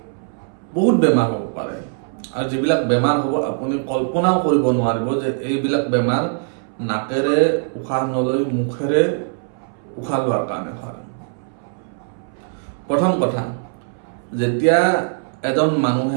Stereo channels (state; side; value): silent; left; 64 dB below the other